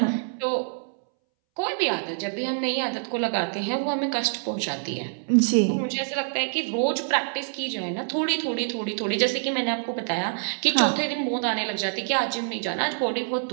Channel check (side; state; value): left; silent; 61 dB below the other